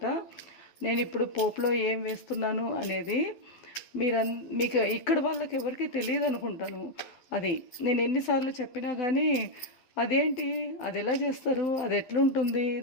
నేను ఇప్పుడు పోపులో ఏం వేస్తున్నాను అనేది మీకు ఇక్కడ వాళ్ళకి ఎవరికి తెలియదు అనుకుంటాను. అది నేను ఎన్నిసార్లు చెప్పినా కానీ అదేంటి, అది ఎలా చేస్తారు, అది ఎట్లుంటుంది,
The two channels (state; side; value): late; right; 12 ms